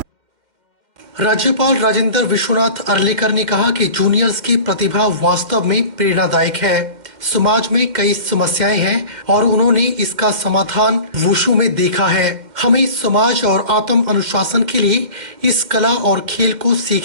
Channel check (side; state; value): left; late; 2.1 ms